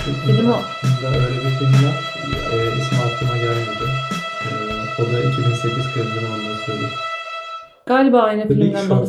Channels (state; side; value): identical; both; correlation 1.00